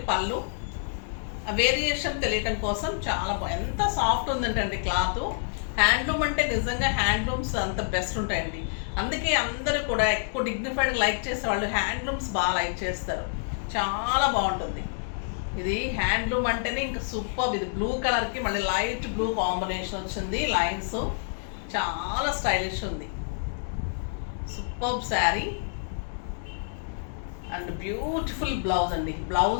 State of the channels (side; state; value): right; silent; digital silence